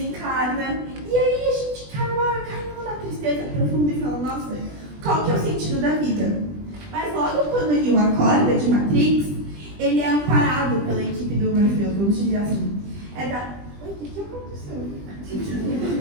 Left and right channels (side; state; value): left; late; 20 ms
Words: e aí a gente cai numa tristeza profunda e fala: nossa, qual que é o sentido da vida? Mas logo quando o Neo acorda de Matrix, ele é amparado pela equipe do Morpheus, vamos dizer assim. Oi, o que aconteceu?